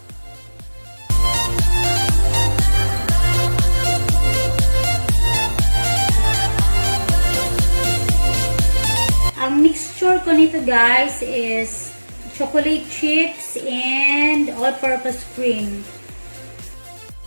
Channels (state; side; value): inverted; both; correlation -1.00